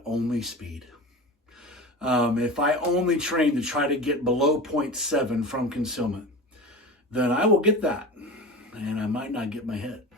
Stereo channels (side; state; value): both; normal; correlation 0.31